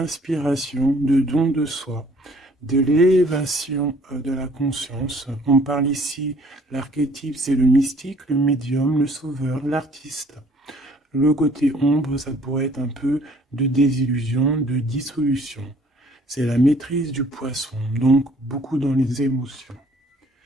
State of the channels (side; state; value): both; normal; correlation 0.58